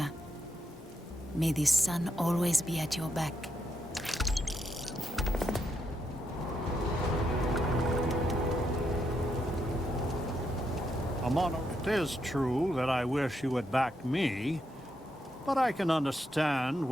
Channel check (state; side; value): normal; both; correlation 0.81